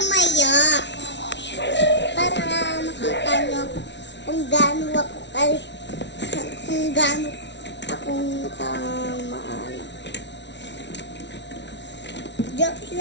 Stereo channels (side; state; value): right; late; 0.51 ms